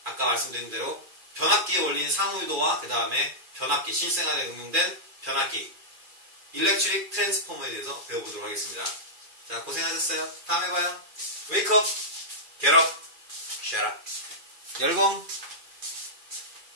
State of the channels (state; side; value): late; left; 2.4 ms